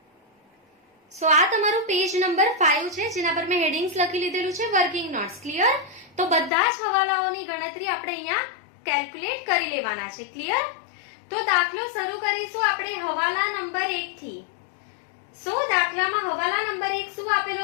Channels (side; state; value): right; drops out; at 6.5 s